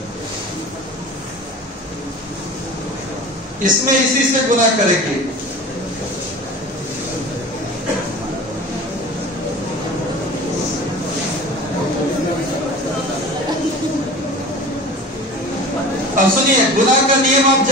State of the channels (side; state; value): both; normal; correlation 0.37